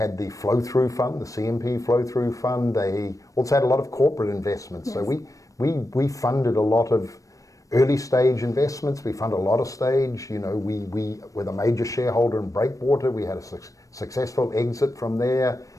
the flow-through fund, the CMP flow-through fund. They also had a lot of corporate investments. Yes. So we funded a lot of early stage investments. We funded a lot of stage. We were a major shareholder in Breakwater. We had a successful exit from there.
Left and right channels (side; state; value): right; late; 0.16 ms